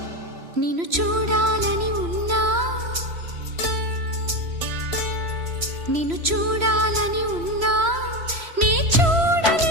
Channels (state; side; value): late; left; 3.0 ms